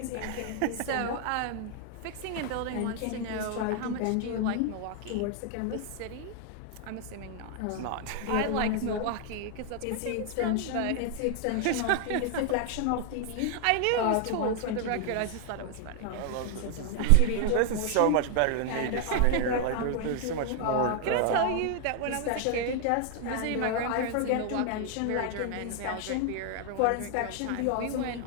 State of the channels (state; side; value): different; both; correlation 0.00